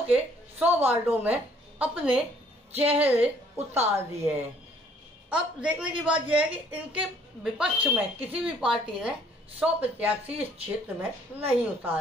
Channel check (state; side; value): normal; both; correlation 0.61